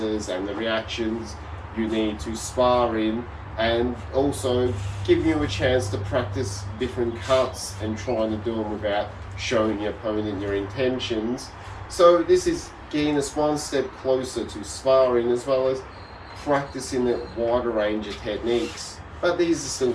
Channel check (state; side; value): identical; both; correlation 1.00